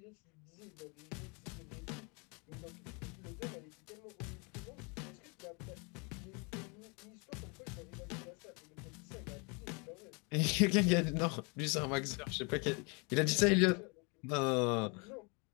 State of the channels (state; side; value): quieter; right; 32.2 dB